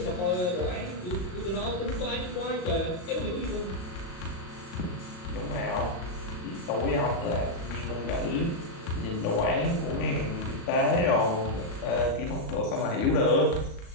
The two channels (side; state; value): right; late; 36 ms